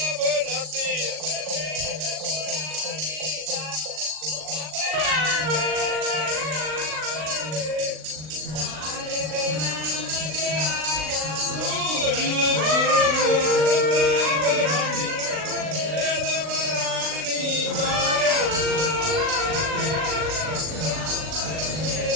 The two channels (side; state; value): left; late; 39 ms